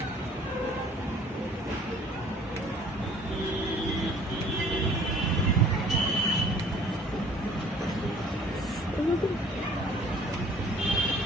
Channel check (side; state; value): both; normal; correlation 0.53